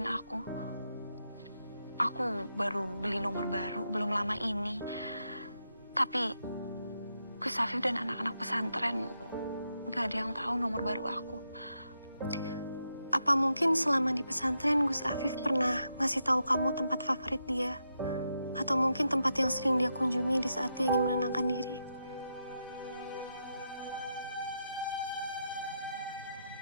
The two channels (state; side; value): inverted; both; correlation -0.84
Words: aku. Aku baru beli nomor baru, belum lama ini. Tapi Gus Afif dan anak-anak pesantren gak ada yang tahu nomor baru aku. Apa mungkin selama di pesantren Gus Afif pernah ngasih tahu kamu tempat favorit dia? Atau mungkin tempat yang sering dia kunjungi di saat dia ingin menenangkan diri?